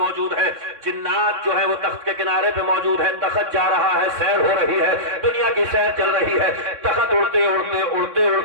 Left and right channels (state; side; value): late; left; 3.6 ms